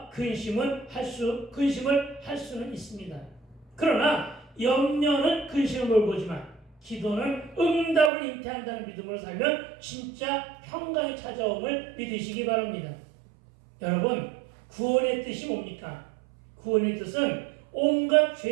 근심을 할 수는 있습니다. 그러나 염려는 근심을 몰고 오지만 기도는 응답을 잉태한다는 믿음으로 살면 진짜 평강이 찾아옴을 믿으시기 바랍니다. 여러분 구원의 뜻이 뭡니까? 구원의 뜻은 온갖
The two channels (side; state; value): left; drops out; at 8.1 s